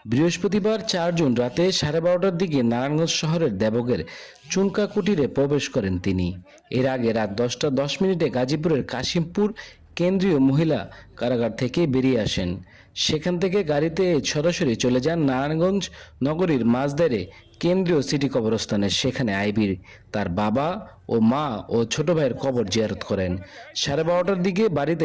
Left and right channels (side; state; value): both; identical; correlation 1.00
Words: বৃহস্পতিবার ৪ জুন রাতে ১২:৩০টার দিকে নারায়ণগঞ্জ শহরের দেবগের চুনকা কুটিরে প্রবেশ করেন তিনি। এর আগে রাত ১০টা ১০ মিনিটে গাজীপুরের কাশিমপুর কেন্দ্রীয় মহিলা কারাগার থেকে বেরিয়ে আসেন। সেখান থেকে গাড়িতে সরাসরি চলে যান নারায়ণগঞ্জ নগরীর মাঝদারে কেন্দ্রীয় সিটি কবরস্থানে। সেখানে আইভীর তার বাবা ও মা ও ছোট ভাইয়ের কবর জিয়ারত করেন। ১২:৩০টার দিকে বাড়িতে